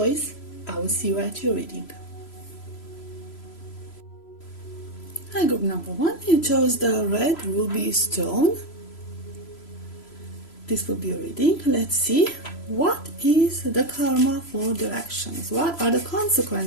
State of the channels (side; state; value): right; late; 3.0 ms